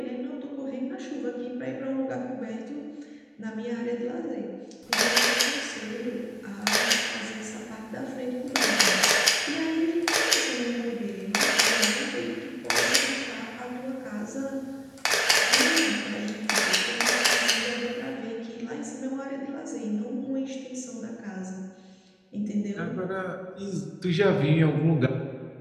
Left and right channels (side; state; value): both; identical; correlation 1.00